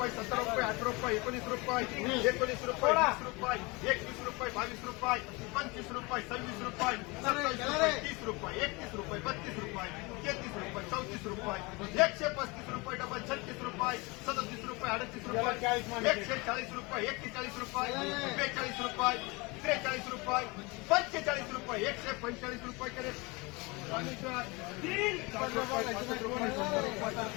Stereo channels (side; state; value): right; quieter; 26.0 dB